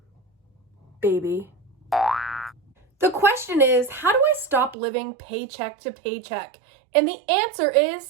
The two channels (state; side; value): drops out; left; at 4.8 s